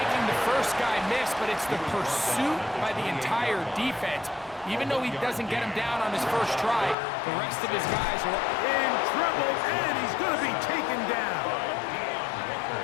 the first guy miss, but it's the pursuit by the entire defense. Even though he doesn't get him down on his first try, the rest of his guys are in trouble, and he's going to be taken down.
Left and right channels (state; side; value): drops out; right; at 7.0 s